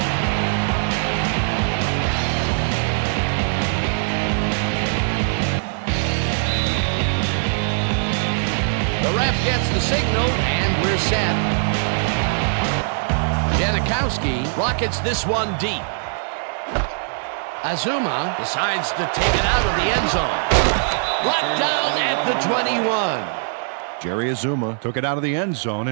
The ref gets the signal, and we're set. Janikowski rockets this one deep. Azuma decides to take it out of the end zone. Brought down at the 21. Jerry Azuma took it out of the end zone,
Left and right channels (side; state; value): left; silent; 65 dB below the other